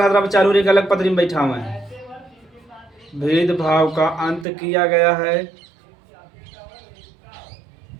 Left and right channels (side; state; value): left; drops out; at 4.5 s